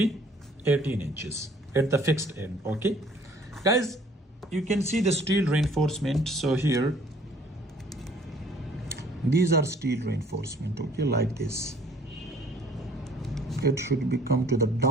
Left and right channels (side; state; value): both; normal; correlation 0.56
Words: 18 inches at the fixed end. Okay, guys, you can see the steel reinforcement. So here, these are steel reinforcement, okay, like this. It should be come to the